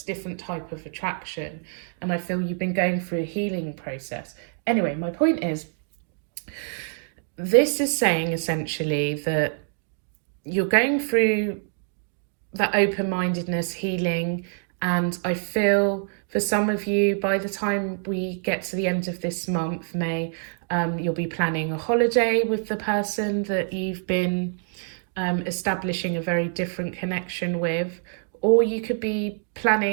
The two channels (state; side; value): silent; left; 61 dB below the other